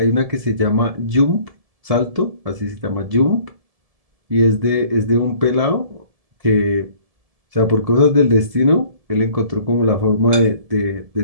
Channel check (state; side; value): late; left; 1.7 ms